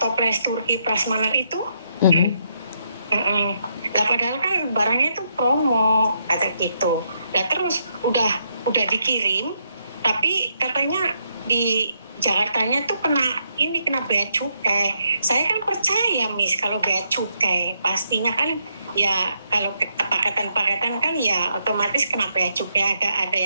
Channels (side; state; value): both; inverted; correlation -0.77